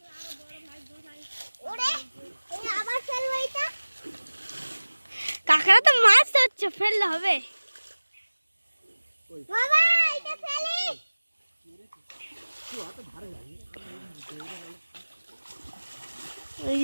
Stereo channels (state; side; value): inverted; both; correlation -1.00